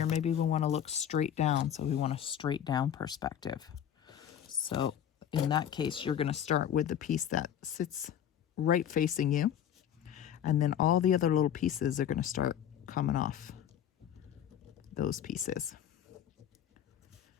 Maybe we want to look straight down. So we want a straight down perspective. So in that case, you're going to start with the piece that sits right facing you. And then all the other little pieces are going to start coming off those pieces.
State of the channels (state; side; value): quieter; right; 9.6 dB